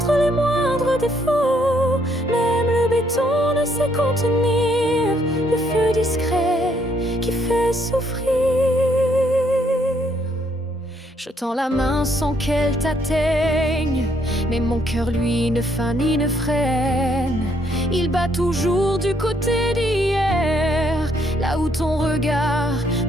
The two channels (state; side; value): normal; both; correlation 0.70